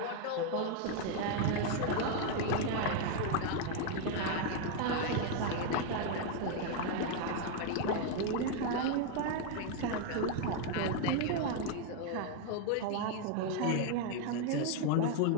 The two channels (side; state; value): both; different; correlation 0.01